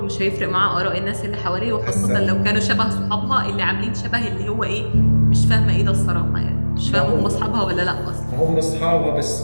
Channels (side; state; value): both; inverted; correlation -1.00